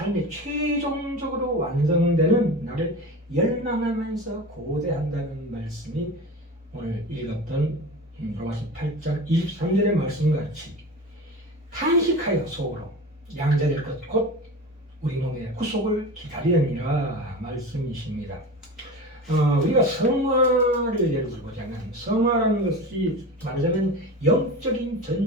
최종적으로 완성되는 나를 열망하면서 고대한다는 말씀이 오늘 읽었던 로마서 8장 23절의 말씀같이 탄식하여 속으로 양자될 것 곧 우리 몸의 구속을 기다리느니라 말씀이십니다. 우리가 성화를 예를 들고자면 성화라는 것이 말하자면 영적인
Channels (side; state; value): both; normal; correlation 0.31